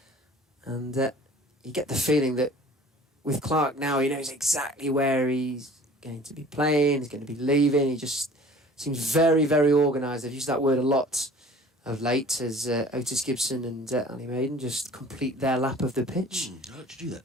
And you get the feeling that with Clark now, he knows exactly where he's going to be playing, he's going to be leaving. He just seems very, very organised. I've used that word a lot of late as Otis Gibson and Ali Maiden just complete their lap of the pitch. I like to do that,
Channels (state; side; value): normal; both; correlation 0.47